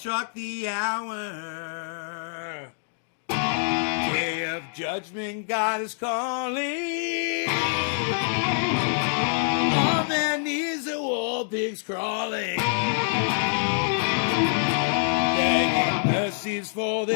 the hour. Day of judgment, God is calling. On their knees, the war pigs crawling. Begging mercies for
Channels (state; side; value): silent; right; digital silence